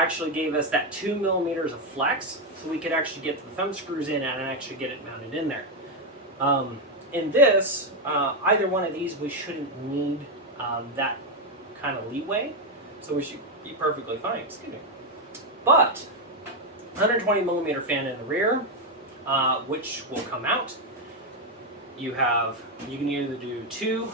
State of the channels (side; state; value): both; normal; correlation 0.05